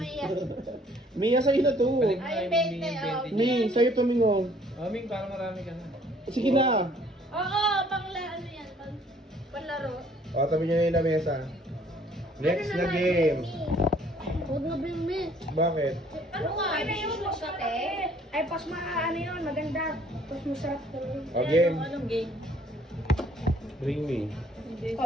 Mia, sa'yo na to. Balik na Ay, yung 20, Ming, oh. 20 niya. Mi, sa'yo to, Mingo. Oh, Ming, parang marami ka na. Sige na. Oo, ano yan, panlaro. O, tabi nyo na yung lamesa. Next na game. Huwag na bring me. Bakit? Ano nga, ano yung magkate? Ay, pas ano yun, maganda. Pas masarap talaga. O, game. Anong game? Bring me.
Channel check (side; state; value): both; normal; correlation 0.60